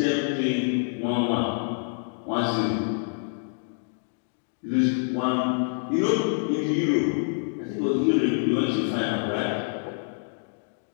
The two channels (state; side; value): silent; right; digital silence